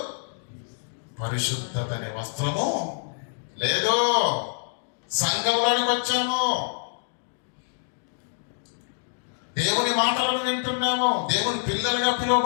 పరిశుద్ధత అనే వస్త్రము లేదు. సంఘంలోనికి వచ్చాము, దేవుని మాటలను వింటున్నాము, దేవుని పిల్లలుగా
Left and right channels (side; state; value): right; silent; digital silence